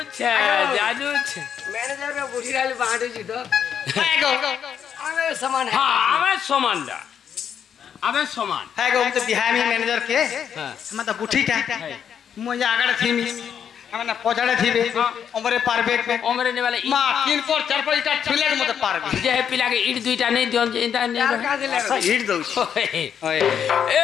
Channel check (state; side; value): quieter; right; 8.3 dB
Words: জানুছে ম্যানেজার কে বুঝি রালি বাঁটুছি তো আমি সমান হ্যাঁ আমার সমানটা আমার সমান হ্যাঁ গো তো বিহামি ম্যানেজার কে আমার তো বুঠিটা মই আগাড়ে থিমি আমার না পছাড়ে থিবে ওমরে পারবে ওমরে নেবালে মা তিন পর চার পর ইটা ছিলের মতো পারবে যে পিলাকে ইট দুইটা নেই দিন যে ইটা নেই আর কাজে লাগে হিট দউছি ওই